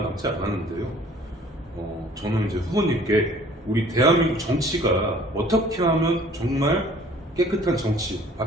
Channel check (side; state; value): both; normal; correlation 0.53